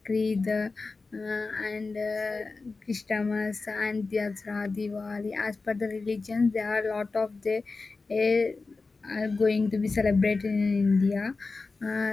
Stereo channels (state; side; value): quieter; right; 3.9 dB